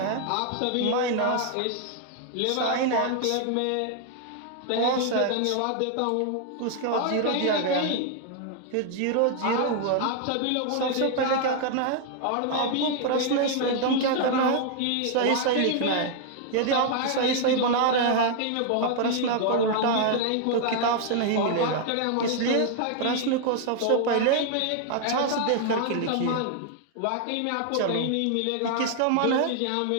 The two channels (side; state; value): both; different; correlation 0.00